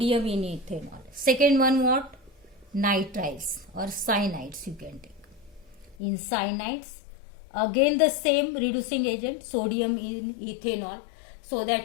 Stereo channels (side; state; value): right; drops out; at 6.0 s